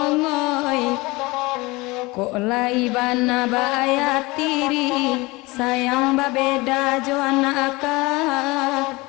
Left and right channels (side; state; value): right; quieter; 22.9 dB